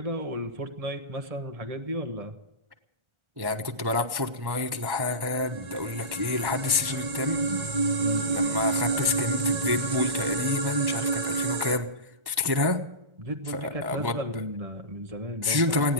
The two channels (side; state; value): left; late; 1.1 ms